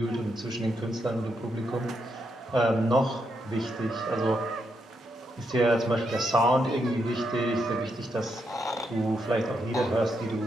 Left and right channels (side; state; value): both; normal; correlation 0.80